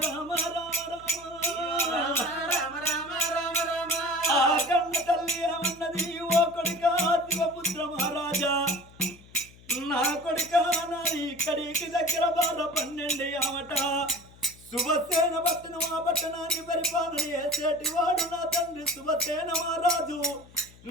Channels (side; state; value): left; noise; hum, 23 dB below the sound